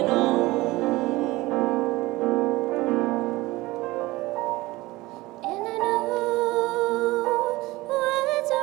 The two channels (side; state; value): left; quieter; 19.8 dB